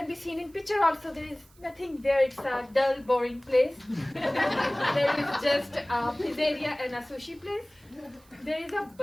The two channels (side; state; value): right; noise; hiss, 29 dB below the sound